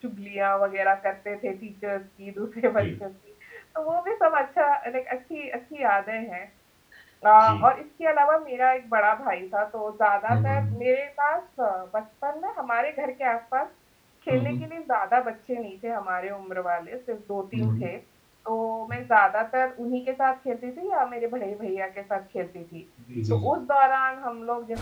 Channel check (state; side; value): identical; both; correlation 1.00